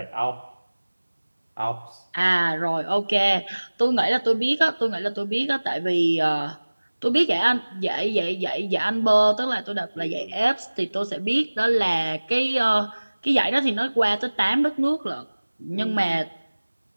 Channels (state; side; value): inverted; both; correlation -1.00